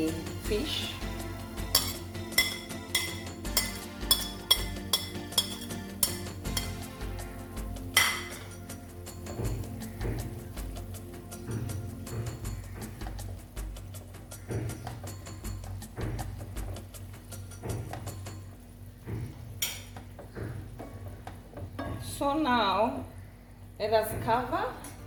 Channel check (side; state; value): both; identical; correlation 1.00